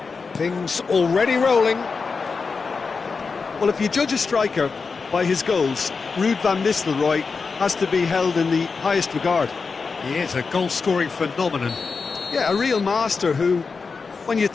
Things already rolling. Well, if you judge a striker by his goals, Ruud van Nistelrooy has to be held in the highest regard. He is a goal-scoring phenomenon. Yeah, a real master who, when you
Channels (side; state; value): right; quieter; 4.8 dB